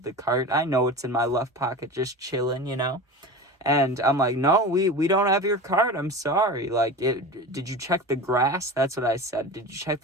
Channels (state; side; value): normal; both; correlation 0.31